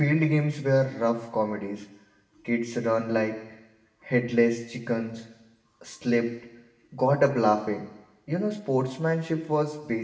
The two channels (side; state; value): both; identical; correlation 1.00